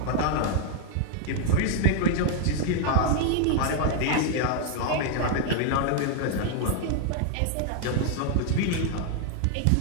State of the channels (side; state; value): both; different; correlation 0.00